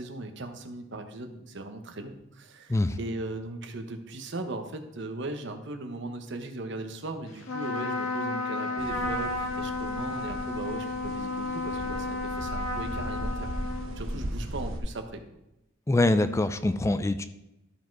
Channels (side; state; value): both; normal; correlation 0.58